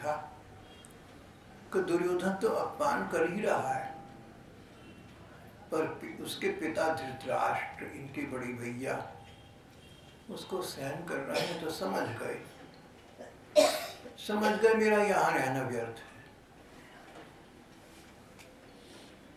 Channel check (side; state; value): both; identical; correlation 1.00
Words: कि दुर्योधन तो अपमान कर ही रहा है, पर उसके पिता धृतराष्ट्र, इनके बड़े भैया, उसको सहन कर रहे हैं, तो समझ गए मेरा यहाँ रहना व्यर्थ है,